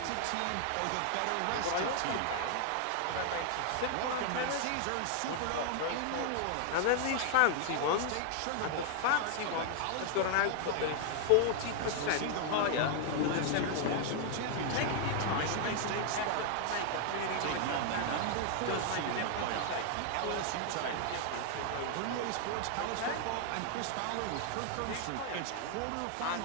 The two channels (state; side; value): different; both; correlation 0.00